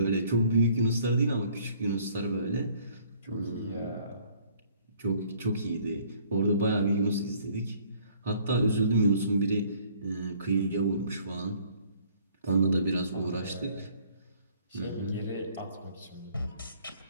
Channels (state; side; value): inverted; both; correlation -0.59